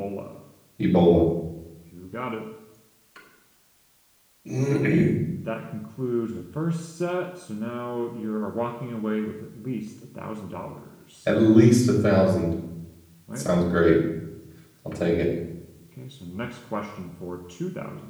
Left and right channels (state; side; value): identical; both; correlation 1.00